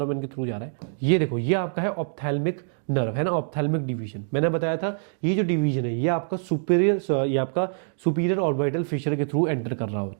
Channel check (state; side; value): silent; left; digital silence